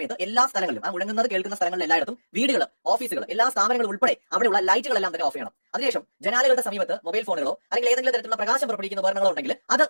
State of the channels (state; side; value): inverted; both; correlation -1.00